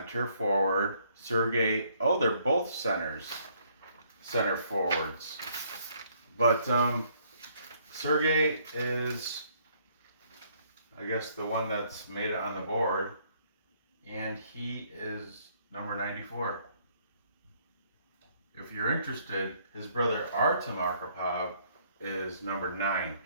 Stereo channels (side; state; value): both; inverted; correlation -0.66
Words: forward. Sergei, they're both center forwards. But Sergei is, I guess, the one that's made it on the board, and he is number 94. If you're interested, his brother Artem Arkhipov is number 9.